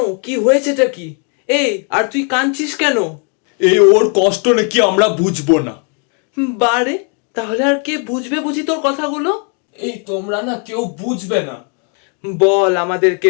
কি হয়েছেটা কি? এই আর তুই কাঁদছিস কেন? এই ওর কষ্ট নাকি আমরা বুঝবো না। বারে, তাহলে আর কে বুঝবে বুঝি তোর কথাগুলো? এই তোমরা না কেউ বুঝবে না। বল,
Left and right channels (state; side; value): quieter; right; 39.5 dB